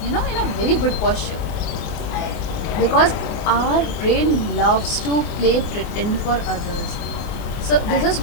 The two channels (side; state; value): right; late; 24 ms